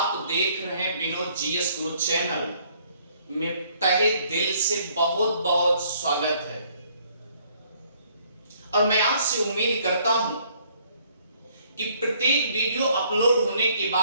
देख रहे हैं विनोद जीएस गुरु चैनल में। तहे दिल से बहुत बहुत स्वागत है और मैं आपसे उम्मीद करता हूं कि प्रत्येक वीडियो अपलोड होने के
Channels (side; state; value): both; inverted; correlation -0.64